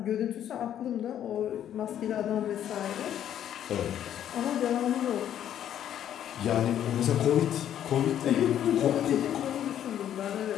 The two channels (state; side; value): quieter; right; 10.5 dB